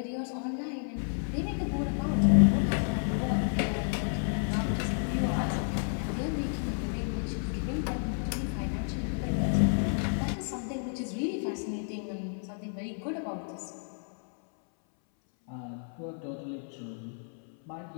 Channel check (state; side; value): silent; right; 57 dB below the other